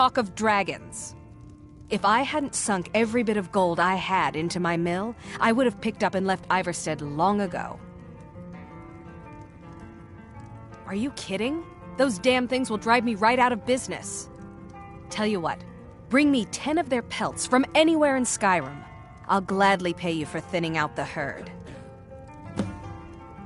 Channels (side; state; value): both; identical; correlation 1.00